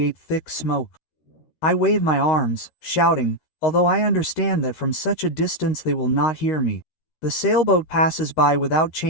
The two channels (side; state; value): right; late; 13 ms